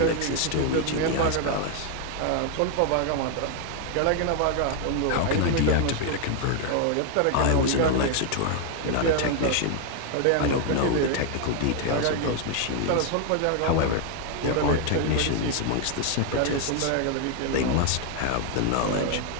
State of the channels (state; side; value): different; both; correlation 0.01